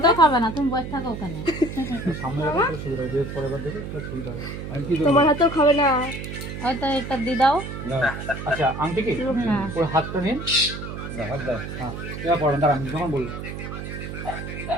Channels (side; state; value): right; noise; hum, 8 dB below the sound